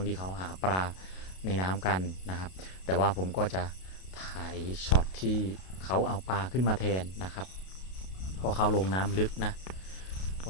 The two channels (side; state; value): right; late; 32 ms